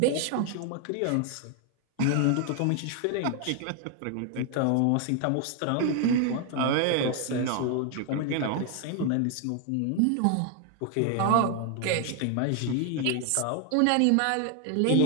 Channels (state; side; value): different; both; correlation 0.00